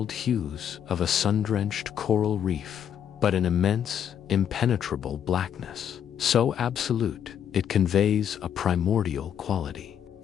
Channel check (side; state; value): right; quieter; 9.0 dB